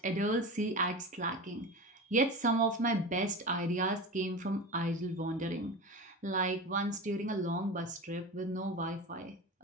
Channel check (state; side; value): normal; both; correlation 0.27